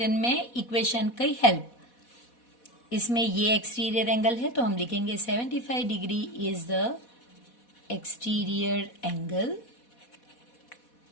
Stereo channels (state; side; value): late; right; 4.1 ms